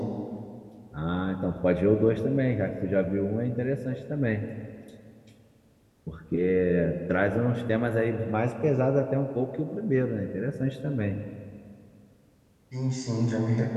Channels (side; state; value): both; identical; correlation 1.00